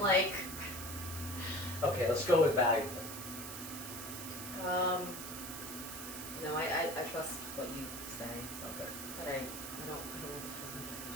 like. Okay, let's go with valuable. No, I trust what you say, Okay. but I don't want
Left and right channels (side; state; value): right; noise; hiss, 8 dB below the sound